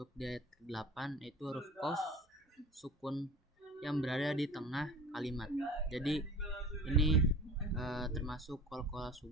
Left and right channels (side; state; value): both; normal; correlation 0.40